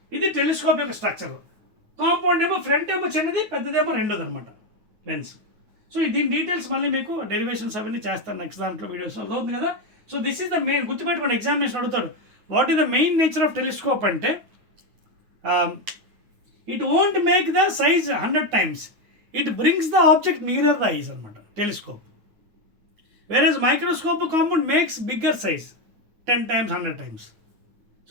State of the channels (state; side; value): late; left; 9.4 ms